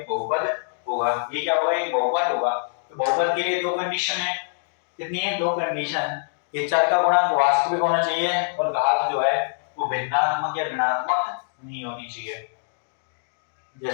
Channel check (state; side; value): silent; right; digital silence